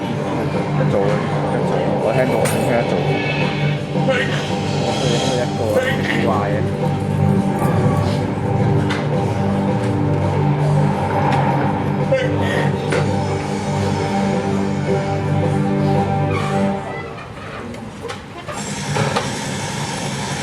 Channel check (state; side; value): identical; both; correlation 1.00